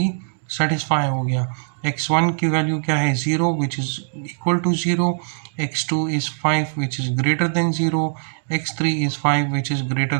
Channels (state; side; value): silent; left; digital silence